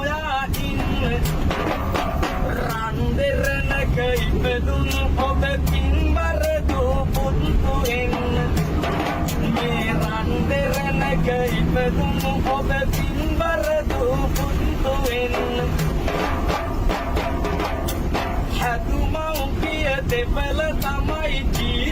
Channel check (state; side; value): identical; both; correlation 1.00